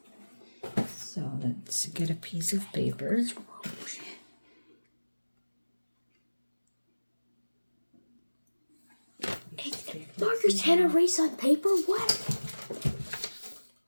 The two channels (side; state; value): both; inverted; correlation -1.00